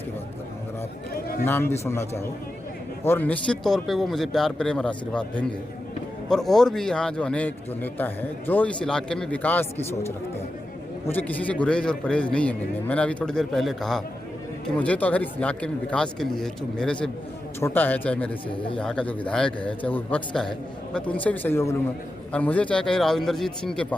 की बात कर रहा हूँ, अगर आप नाम भी सुनना चाहो, और निश्चित तौर पे वो मुझे प्यार प्रेम और आशीर्वाद देंगे। और भी यहाँ जो अनेक जो नेता हैं जो इस इलाके में विकास की सोच रखते हैं, मुझे किसी से गुरेज और परहेज नहीं है मिलने। मैंने अभी थोड़ी देर पहले कहा कि मुझे तो अगर इस इलाके में विकास के लिए, जो मेरे से छोटा है, चाहे मेरे से यहाँ का जो विधायक है, चाहे वो विपक्ष का है, मैं तो उनसे भी सहयोग लूँगा। और मुझे चाहे कहीं राव इंद्रजीत सिंह के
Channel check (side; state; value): both; normal; correlation 0.90